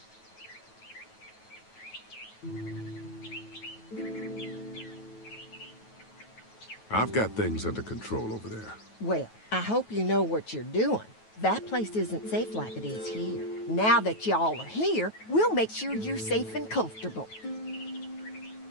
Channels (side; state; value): right; late; 9.3 ms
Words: I've got things under control over there. Well, I hope you know what you're doing. That place isn't safe like it is here. Now that y'all are here, we'll make sure you're safe and comfortable.